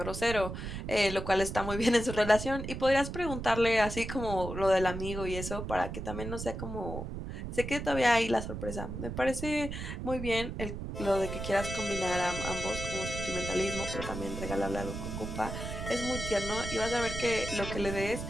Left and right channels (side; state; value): right; noise; rumble, 6 dB below the sound